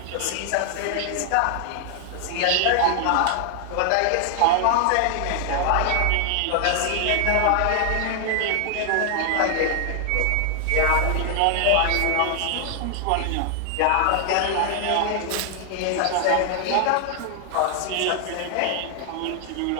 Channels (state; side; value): different; both; correlation 0.00